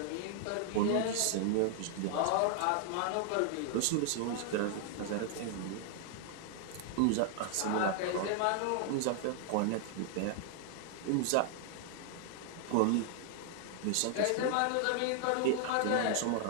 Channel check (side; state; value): both; different; correlation 0.00